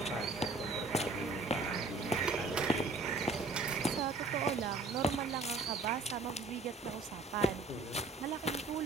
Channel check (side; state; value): left; quieter; 3.5 dB